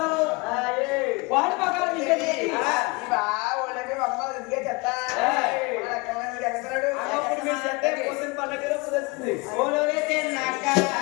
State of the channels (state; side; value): quieter; right; 27.0 dB